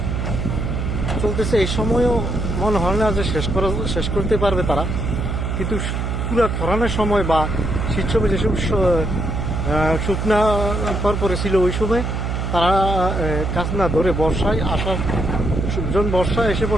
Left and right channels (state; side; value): noise; right; hum, 2 dB below the sound